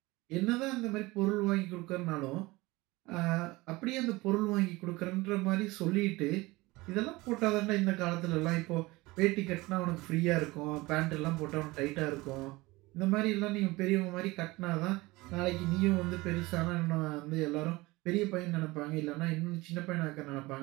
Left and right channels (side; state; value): left; quieter; 21.4 dB